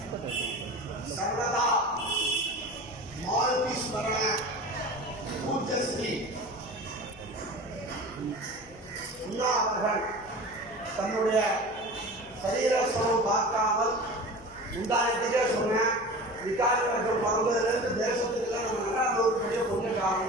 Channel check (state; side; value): noise; left; hum, 23 dB below the sound